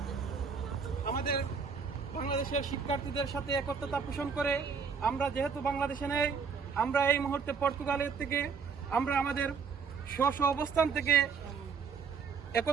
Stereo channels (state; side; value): quieter; left; 5.8 dB